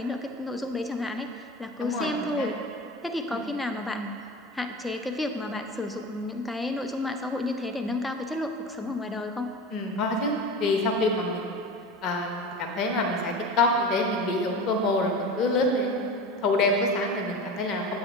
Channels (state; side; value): normal; both; correlation 0.30